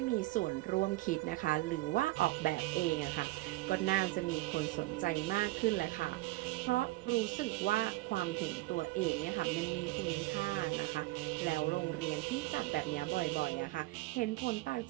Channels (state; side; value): quieter; left; 19.5 dB